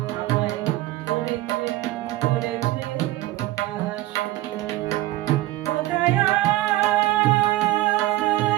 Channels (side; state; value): left; quieter; 16.7 dB